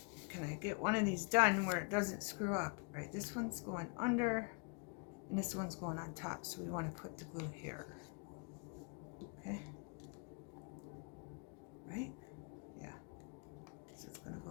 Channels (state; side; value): quieter; right; 34.5 dB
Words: Can I get one of these done where it doesn't screw up? Right, this one's going under and this one's going on top, so we want to put the glue here. Okay, right? Yeah, so it's going to